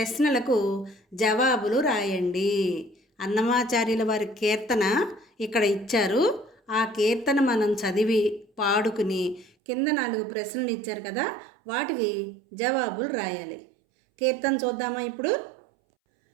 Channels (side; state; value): left; drops out; at 9.5 s